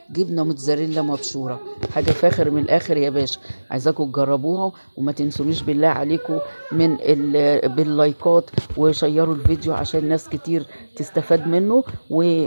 جبنه موتزاريلا مبشوره. حاجه فاخر من الاخر يا باشا. عايزاكم تجربوها وما تنسونيش بالله عليكم باللايكات وشيروا الفيديو عشان ناس كتير تستفاد منه.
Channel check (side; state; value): both; inverted; correlation -1.00